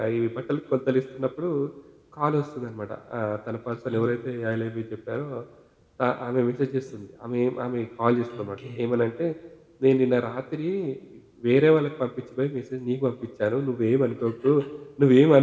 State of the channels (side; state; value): both; identical; correlation 1.00